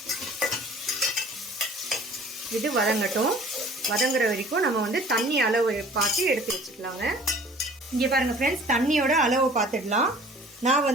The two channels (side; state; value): both; normal; correlation 0.49